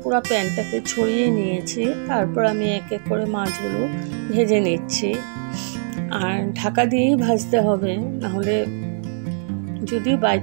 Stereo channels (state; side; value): silent; left; digital silence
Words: পুরো প্যানটাকে ছড়িয়ে নিয়েছি। তারপর আমি এক এক করে মাছগুলো ভেজে নিচ্ছি। আর ঢাকা দিয়েই ভাজতে হবে, নাহলে যদি বাই